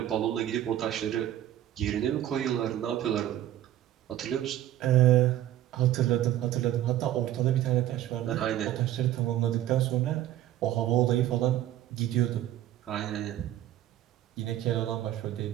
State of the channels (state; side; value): quieter; left; 12.6 dB